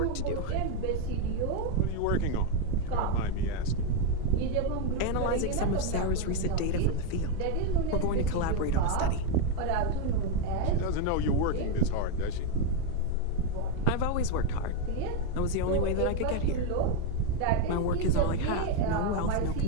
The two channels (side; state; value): both; different; correlation 0.02